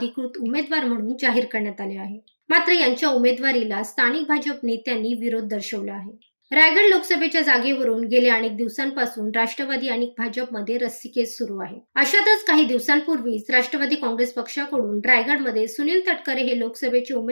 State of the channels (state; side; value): inverted; both; correlation -1.00